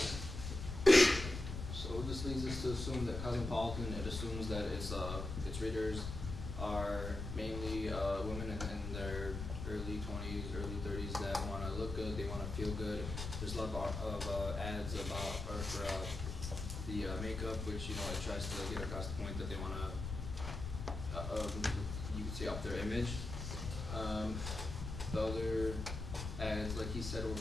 So this leads us to assume that Cosmopolitan, it assumes that its readers are mainly women in their early 20s, early 30s that want to look good, they want to feel good. There's a lot of ads for the makeup, which it tries to get across the point that they want to, you could say, up their image. The other ads, like he said, were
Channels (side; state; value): left; noise; rumble, 6 dB below the sound